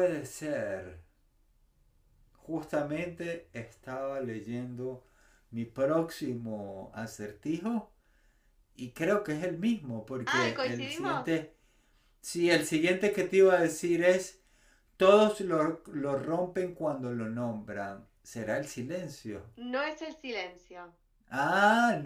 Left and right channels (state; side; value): identical; both; correlation 1.00